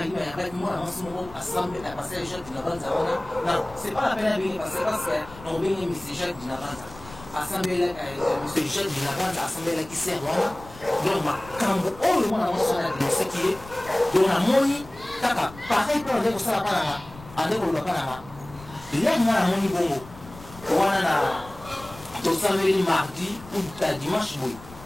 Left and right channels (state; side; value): noise; left; rumble, 19 dB below the sound